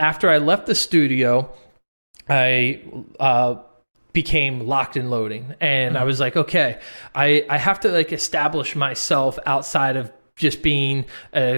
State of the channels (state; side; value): inverted; both; correlation -1.00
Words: I left the studio, I became Locked and Loading, and I was like, okay, I have to like establish myself outside of just being a